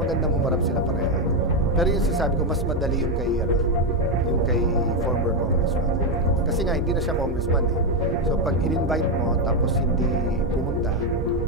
humarap sila pareho. Pero yung sasabi ko, mas madali yung kay former congressman. Kasi nga, hindi na siya congressman eh. So, pag in-invite mo, tapos hindi pumunta,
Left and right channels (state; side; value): normal; both; correlation 0.06